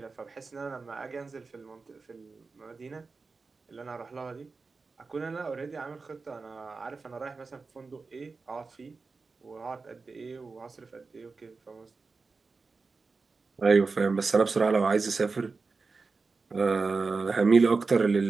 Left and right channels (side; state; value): left; quieter; 4.3 dB